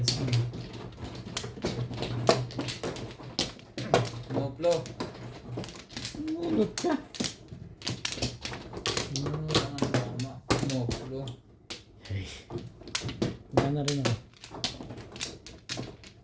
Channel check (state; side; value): identical; both; correlation 1.00